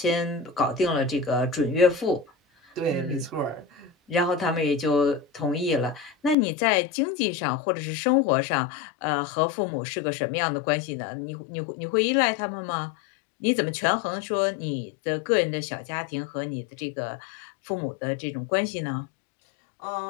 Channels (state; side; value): drops out; right; at 6.4 s